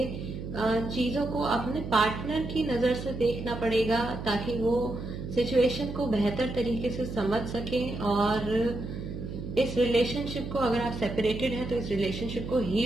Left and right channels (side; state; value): right; noise; hum, 8 dB below the sound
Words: चीजों को अपने पार्टनर की नजर से देखना पड़ेगा ताकि वो सिचुएशन को बेहतर तरीके से समझ सके और इस रिलेशनशिप को, अगर आप सेपरेटेड हैं तो इस रिलेशनशिप को